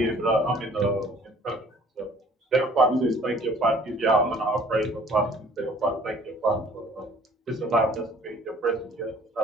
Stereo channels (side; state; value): both; normal; correlation 0.54